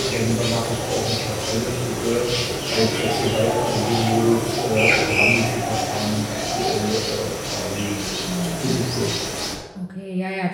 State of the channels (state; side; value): identical; both; correlation 1.00